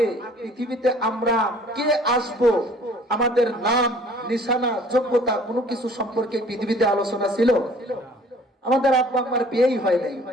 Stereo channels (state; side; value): normal; both; correlation 0.53